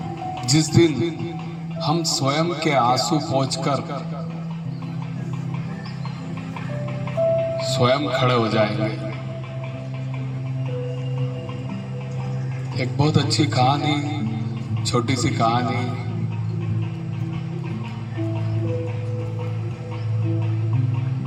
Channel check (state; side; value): identical; both; correlation 1.00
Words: जिस दिन हम स्वयं के आंसू पोंछकर स्वयं खड़े हो जाएंगे। एक बहुत अच्छी कहानी, छोटी सी कहानी।